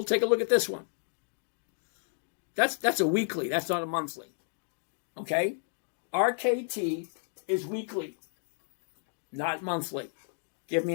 take a look at this one. That's a weekly. That's not a monthly. Okay? RKT is weekly, not monthly. Give me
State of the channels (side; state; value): right; silent; digital silence